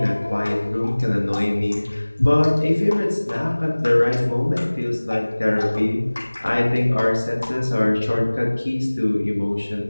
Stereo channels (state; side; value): inverted; both; correlation -1.00